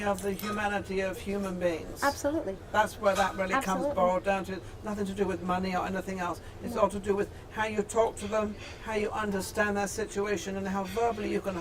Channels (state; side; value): identical; both; correlation 1.00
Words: of the humanity of human beings. Absolutely. That's where that really comes Absolutely. boiled down to. Nothing to do with money or anything else. It's all to do with how you talk to them, how you understand their situation, and how verbally you can